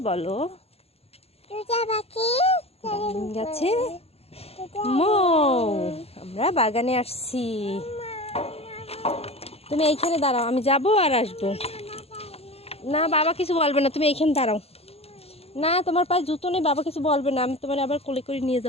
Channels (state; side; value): late; right; 0.29 ms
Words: বলো, গাছে মৌ। আমরা বাগানে আসছি। তুমি এইখানে দাঁড়াও, আমি যাবো আর আসবো। না, বাবা কিছু বলবে না, তুমি এইখানে দাঁড়াও। না, তোমার পায়ে জুতো নেই, বাবা কিছু বলবে না, আমি তোমার আবার কোলে করে নিয়ে